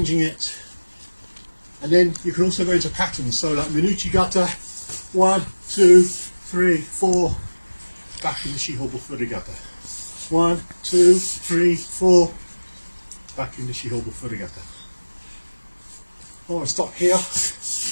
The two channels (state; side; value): inverted; both; correlation -1.00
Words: it. And then you can also go into patterns. So like Minuchigata, 1, 2, 3, 4, back into Shihobu Furygata. 1, 2, 3, 4, back into Shihobu Furygata. I want to stop here,